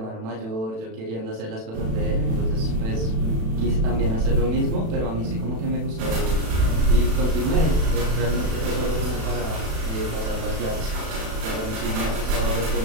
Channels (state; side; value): late; left; 36 ms